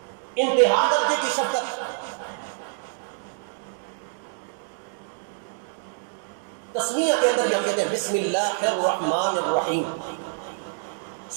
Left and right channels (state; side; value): silent; left; digital silence